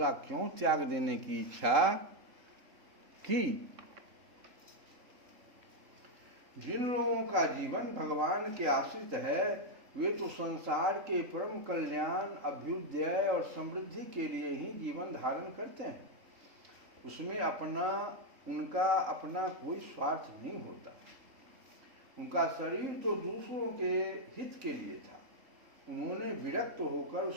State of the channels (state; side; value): late; left; 3.8 ms